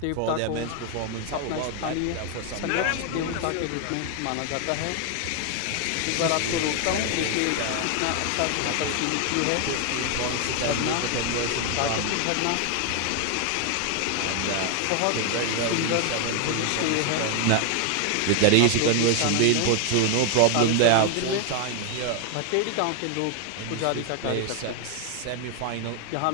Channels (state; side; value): different; both; correlation 0.00